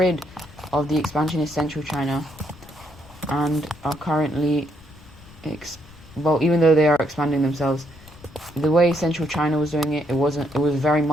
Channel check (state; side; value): noise; left; rumble, 21 dB below the sound